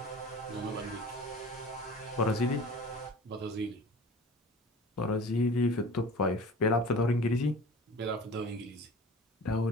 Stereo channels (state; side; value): normal; both; correlation 0.40